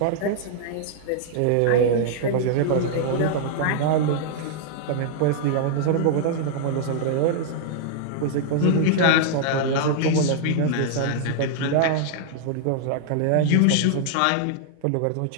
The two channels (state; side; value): different; both; correlation -0.01